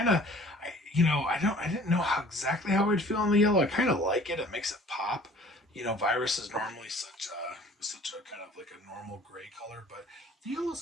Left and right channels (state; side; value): normal; both; correlation 0.50